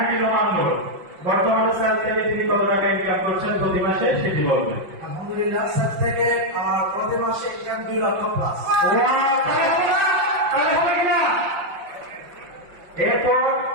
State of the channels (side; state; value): left; late; 5.7 ms